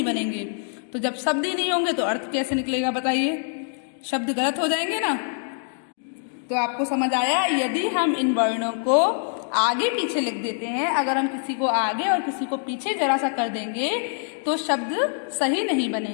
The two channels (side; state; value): right; silent; 59 dB below the other